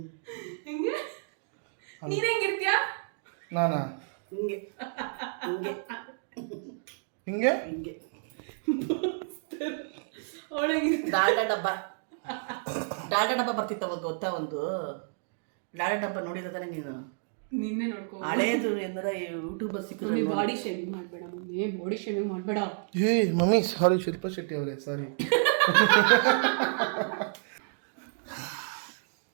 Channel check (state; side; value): silent; left; digital silence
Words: ಹೆಂಗೆ ನೀನ್ ಹೆಂಗಿರ್ತೀಯ? ನಾನಾ ಹಿಂಗೆ ಹಿಂಗೆ ಹಿಂಗೆ ಅವಳಿಗೆ ಡಾಲ್ಡಾ ಡಬ್ಬ ಬರ್ತಿತ್ತು ಅವಾಗ ಗೊತ್ತಾ? ಒಂದು ಡಾಲ್ಡಾ ಡಬ್ಬ ನೋಡಿದ ತಾನೆ ನೀನು? ನಿನ್ನೆ ನೋಡ್ಕೊ. ಹಳೇದು ಎಂದ್ರೆ ಯೂಟ್ಯೂಬ್ ಸಿಕ್ಕಿದ್ರೆ ಬಾಡಿ ಶೇವಿಂಗ್ ಮಾಡ್ಬೇಡ ಮಮ್ಮಿ, ಬಾಡಿ ಶೇವಿಂಗ್ ಮಾಡ್ಬೇಡ. ಏ ಮಮ್ಮಿ ಸಾರಿ, ಶಿಲ್ಪಾ ಶೆಟ್ಟಿ ಅವರೇ ಸಾರಿ.